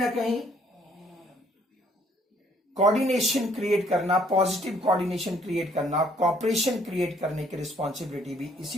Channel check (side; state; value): both; normal; correlation 0.63